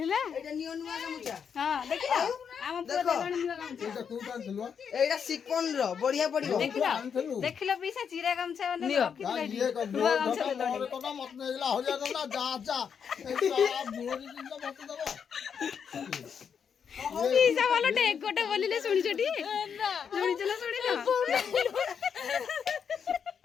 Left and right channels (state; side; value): quieter; right; 7.1 dB